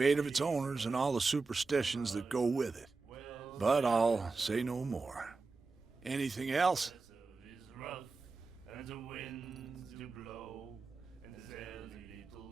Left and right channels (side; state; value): left; quieter; 4.1 dB